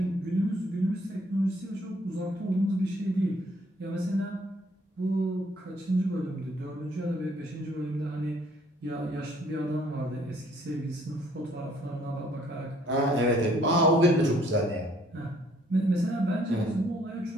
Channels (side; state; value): both; normal; correlation 0.63